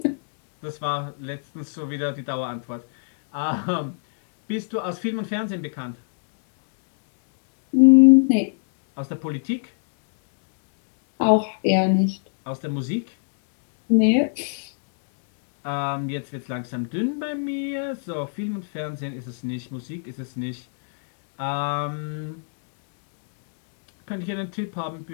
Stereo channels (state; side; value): silent; right; digital silence